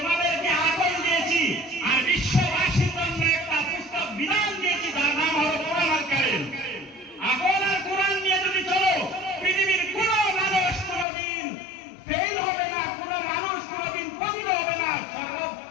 আকল দিয়েছি আর বিশ্ববাসীর জন্য একটা পুস্তক বিধান দিয়েছি, যার নাম হলো কোরআনুল কারীম। আকল আর কোরআন নিয়ে যদি চলো, পৃথিবীর কোন মানুষ কোনদিন ফেল হবে না, কোন মানুষ কোনদিন পতিত হবে না,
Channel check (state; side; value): drops out; right; at 11.1 s